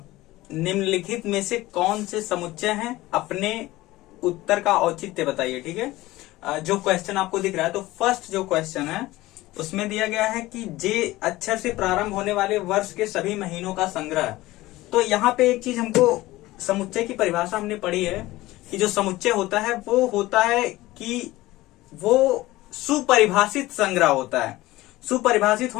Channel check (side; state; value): right; quieter; 18.1 dB